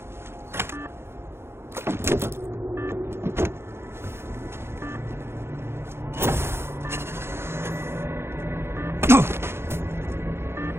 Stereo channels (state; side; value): late; left; 0.12 ms